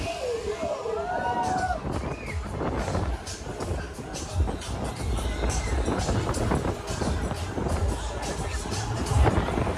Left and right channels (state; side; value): identical; both; correlation 1.00